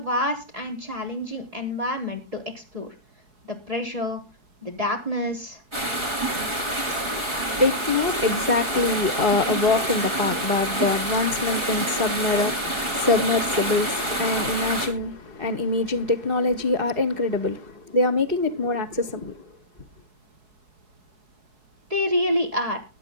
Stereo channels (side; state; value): left; late; 4.7 ms